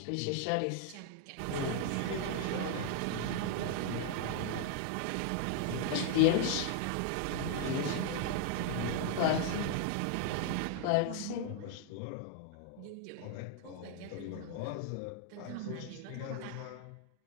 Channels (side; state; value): both; different; correlation 0.00